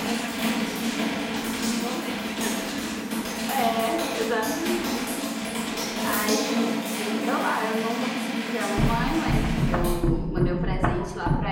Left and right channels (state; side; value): identical; both; correlation 1.00